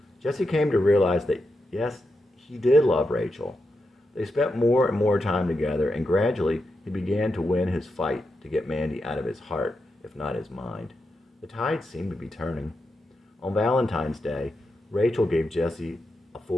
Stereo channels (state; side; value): normal; both; correlation 0.87